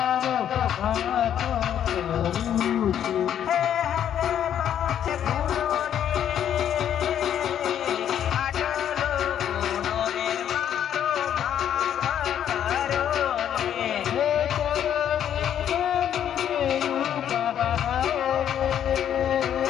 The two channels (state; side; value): quieter; right; 9.8 dB